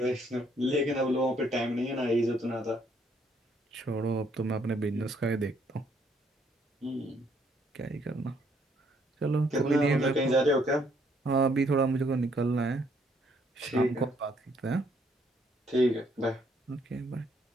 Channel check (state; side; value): normal; both; correlation 0.68